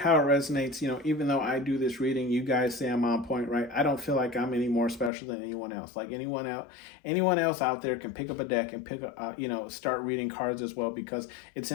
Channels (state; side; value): drops out; right; at 5.1 s